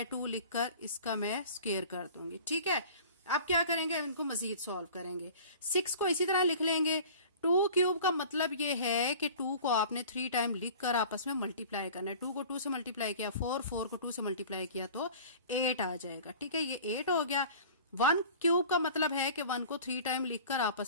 लिखकर इसका मैं स्क्वायर कर दूंगी। ठीक है, अब क्या करेंगे, इनको मजीद सॉल्व करेंगे। 6 को इसी तरह लिख लेंगे। 2³ का मतलब ये है कि 2 को आपने 3 टाइम लिखकर आपस में मल्टीप्लाई करना है। 2 को 2 से मल्टीप्लाई किया 4, 4 को 2 से मल्टीप्लाई किया तो 8 आ जाएगा। ठीक है, ये 8 हो गया। 1³ का मतलब है कि 1 को 3 टाइम लिखकर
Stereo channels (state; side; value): inverted; both; correlation -0.43